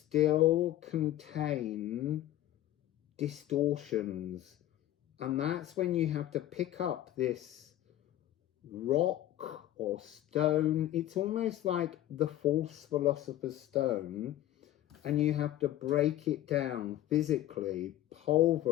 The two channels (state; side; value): quieter; right; 13.5 dB